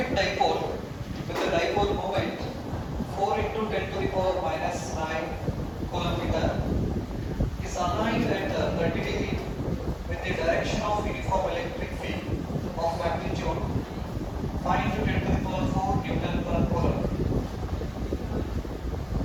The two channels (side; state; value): both; identical; correlation 1.00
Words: dipole with a dipole moment 4 into 10 to the power minus 9 coulomb meter is aligned at 30 degree with the direction of uniform electric field of magnitude 5 into 10 to the power 4 Newton per coulomb.